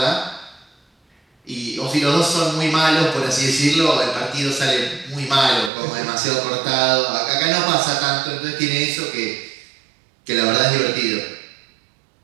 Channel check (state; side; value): drops out; left; at 5.7 s